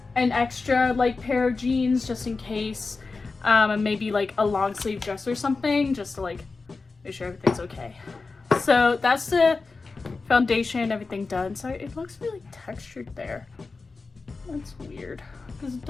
an extra like pair of jeans just in case, and maybe like a long sleeve dress or something just to like make sure everything's okay. So that's the foundation, everything done. So it looks really textured there. That's weird because it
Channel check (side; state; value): right; quieter; 4.1 dB